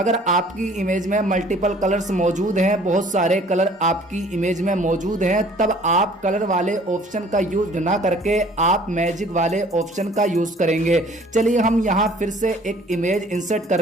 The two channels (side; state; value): both; normal; correlation 0.54